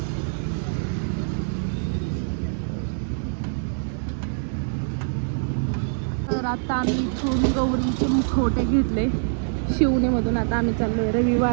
तर आता आम्ही इथून गौरीचे मुखवटे घेतले शिवणीमधून. आता आम्ही चाललोय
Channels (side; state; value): left; silent; 62 dB below the other